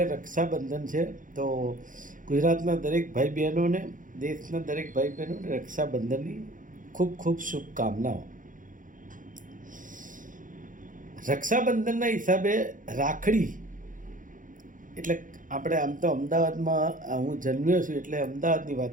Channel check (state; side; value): late; left; 0.38 ms